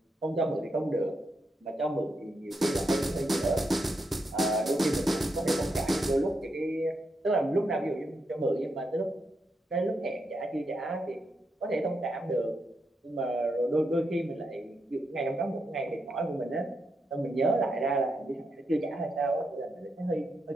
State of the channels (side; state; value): both; normal; correlation 0.83